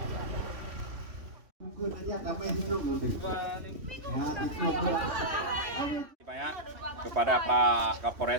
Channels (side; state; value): left; late; 3.1 ms